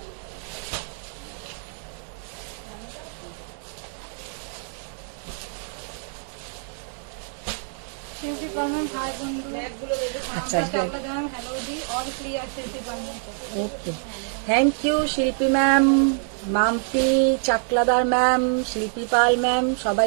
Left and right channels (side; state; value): left; silent; 57 dB below the other